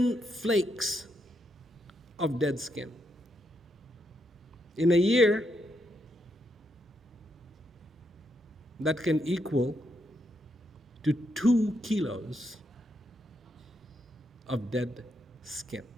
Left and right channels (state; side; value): normal; both; correlation 0.79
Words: flakes of dead skin. In a year, that can equal to 2 kilos of dead skin.